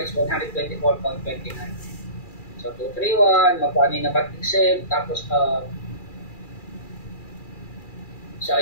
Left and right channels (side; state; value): right; late; 2.4 ms